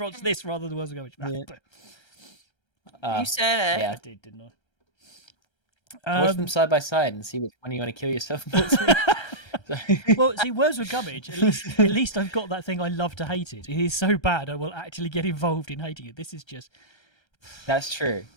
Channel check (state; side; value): late; right; 1.3 ms